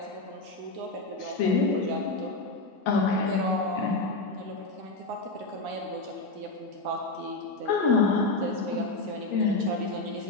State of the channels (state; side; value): quieter; right; 3.2 dB